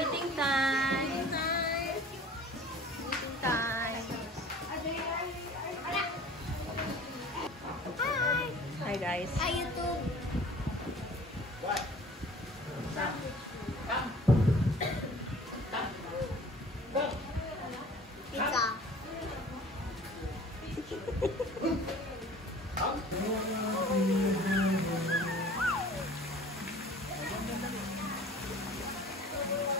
time! Eating time! Hi guys! Hi, YouTube. Pizza.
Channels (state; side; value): normal; both; correlation 0.46